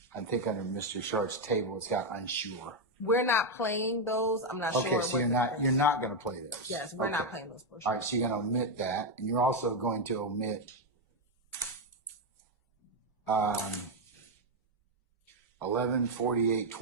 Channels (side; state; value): both; normal; correlation 0.04